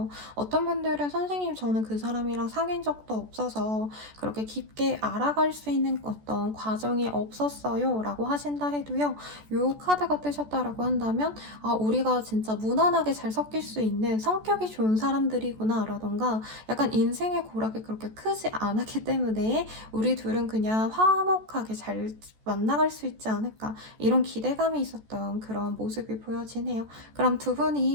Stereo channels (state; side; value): late; left; 14 ms